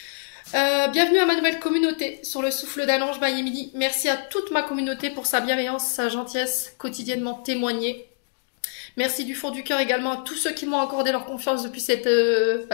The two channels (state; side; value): silent; right; digital silence